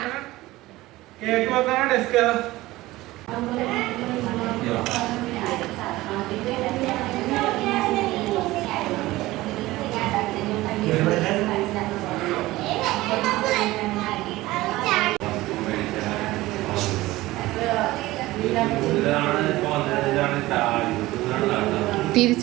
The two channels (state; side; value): quieter; left; 18.2 dB